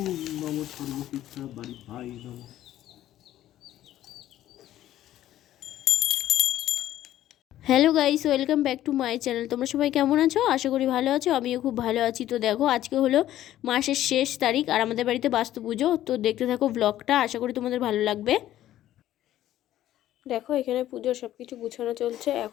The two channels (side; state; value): right; quieter; 13.1 dB